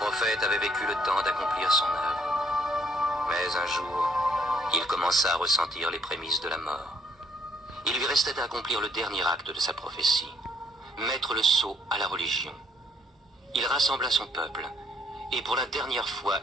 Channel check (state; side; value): normal; both; correlation 0.66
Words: avait vécu le temps d'accomplir son œuvre. Mais un jour, il commença à ressentir les prémices de la mort. Il lui restait à accomplir le dernier acte de sa prophétie, mettre le sceau à la religion. Il rassembla son peuple, et pour la dernière fois,